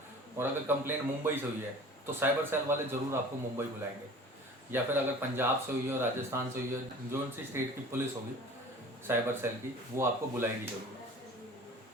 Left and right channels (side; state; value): both; normal; correlation 0.43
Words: और अगर कंप्लेंट मुंबई से हुई है तो साइबर सेल वाले ज़रूर आपको मुंबई बुलाएंगे, या फिर अगर पंजाब से हुई है, राजस्थान से हुई है, जो सी स्टेट की पुलिस होगी साइबर सेल की, वो आपको बुलाएगी जरूर,